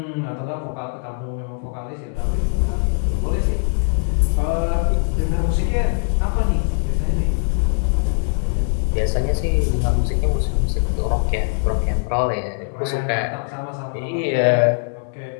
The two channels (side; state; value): right; silent; 64 dB below the other